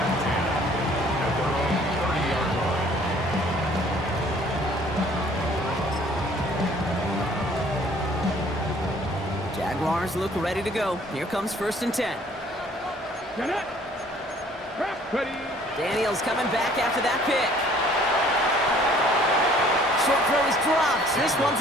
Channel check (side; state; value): both; normal; correlation 0.56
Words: Jaguars look ready to go. Here comes first and 10. Get it. Ready. Daniels coming back after that pick. Short throw is dropped. This one's